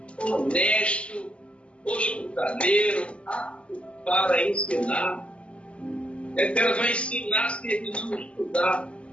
honesto, hospitaleiro, apto para ensinar. Que ela vai ensinar se ele não estudar,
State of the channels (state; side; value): late; right; 0.058 ms